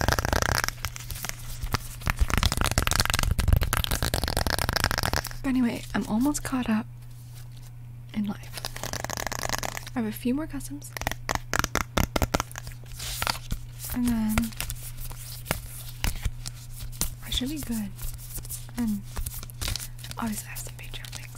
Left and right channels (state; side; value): identical; both; correlation 1.00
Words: Anyway, I'm almost caught up in life. I have a few more customs. And then I should be good. And obviously I have some Patreon